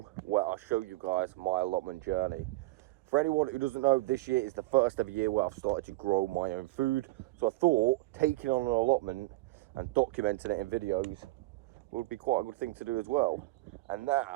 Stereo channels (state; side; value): quieter; left; 20.5 dB